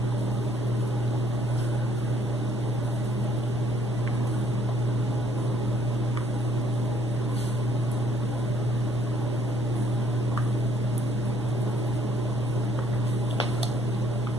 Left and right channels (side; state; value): both; normal; correlation 0.64